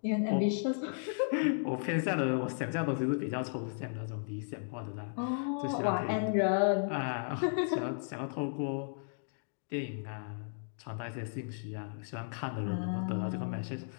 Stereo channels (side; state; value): right; silent; digital silence